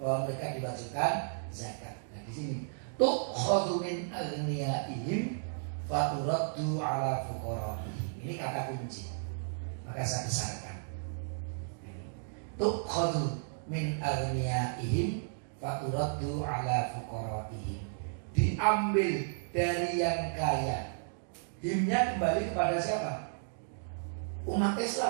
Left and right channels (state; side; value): silent; left; digital silence